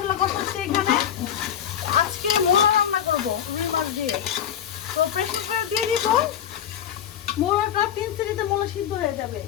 কষাচ্ছি। এখানে আজকে মোলা রান্না করবো রুই মাছ দিয়ে। তো প্রেসার কুকারে দিয়ে দিব মোলাটা, 3 সিটিতে মোলা সিদ্ধ হয়ে যাবে,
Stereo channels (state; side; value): quieter; right; 9.5 dB